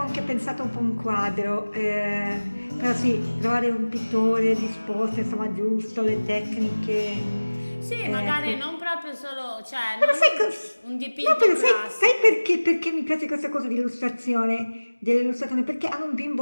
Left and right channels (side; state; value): both; inverted; correlation -1.00